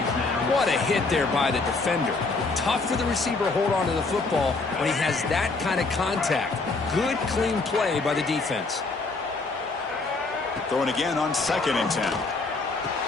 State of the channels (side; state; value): right; quieter; 3.7 dB